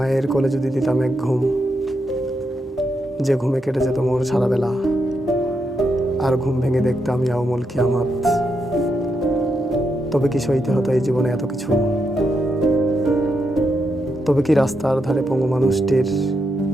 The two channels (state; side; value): normal; both; correlation 0.82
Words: কোলে যদি দিতাম এক ঘুম, যে ঘুমে কেটে যেত মোর সারা বেলা, আর ঘুম ভেঙে দেখতাম ইয়াউমুল কিয়ামত। তবে কি সইতে হতো এই জীবনে এত কিছু? তবে কি রাস্তার ধারে পঙ্গু মানুষটির